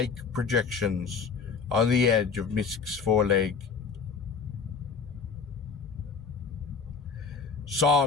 projections on the edge of Misk's foreleg.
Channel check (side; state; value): right; quieter; 5.5 dB